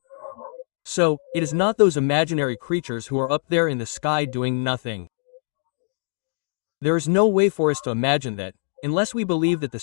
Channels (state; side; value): silent; right; digital silence